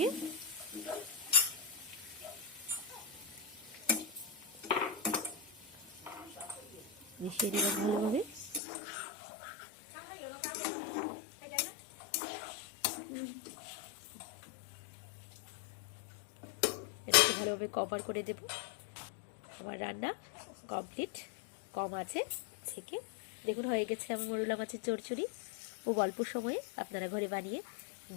নিলাম ভালোভাবে। এটাকে ভালোভাবে কভার করে দেব। আমার রান্না কমপ্লিট। কম আছে থেকে দেখুন হয়ে গেছে আমার মোরলা মাছের চচ্চড়ি। খুব অল্প সময়ে আপনারা ঘরে বানিয়ে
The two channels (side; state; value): right; drops out; at 8.6 s